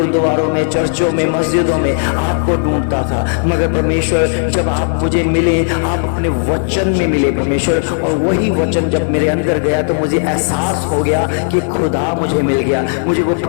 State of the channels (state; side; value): silent; right; digital silence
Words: में, चर्चों में, मस्जिदों में आपको ढूंढता था। मगर परमेश्वर जब आप मुझे मिले, आप अपने वचन में मिले परमेश्वर, और वही वचन जब मेरे अंदर गया तो मुझे एहसास हो गया कि खुदा मुझे मिल गया, मुझे वो